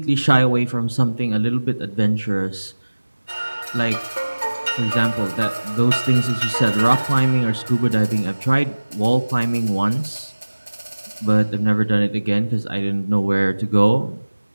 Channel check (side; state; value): both; inverted; correlation -1.00